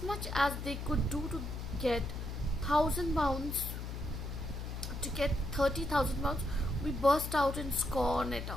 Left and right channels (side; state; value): left; noise; hum, 6 dB below the sound